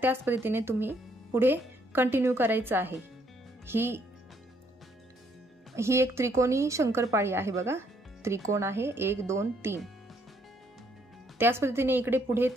त्याच पद्धतीने तुम्ही पुढे कंटिन्यू करायचं आहे. ही एक त्रिकोणी शंकरपाळी आहे बघा. त्रिकोण आहे 1 2 3. त्याच पद्धतीने इकडे पुढे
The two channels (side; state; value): both; normal; correlation 0.69